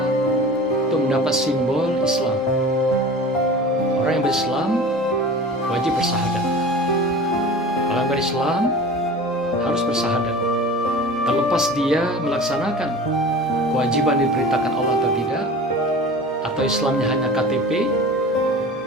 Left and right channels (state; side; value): normal; both; correlation 0.37